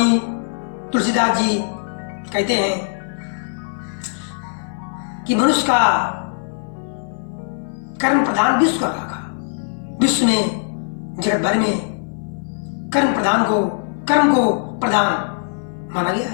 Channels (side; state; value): right; silent; 58 dB below the other